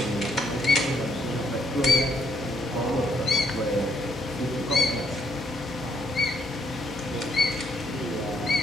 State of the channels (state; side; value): normal; both; correlation 0.73